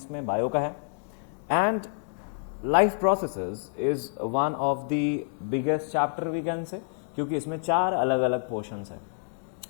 में बायो का है. And life processes is one of the biggest chapter we can say, क्योंकि इसमें 4 अलग अलग पोर्शंस हैं,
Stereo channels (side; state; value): right; silent; digital silence